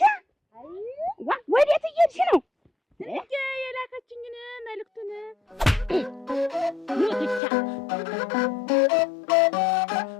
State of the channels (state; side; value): drops out; right; at 7.4 s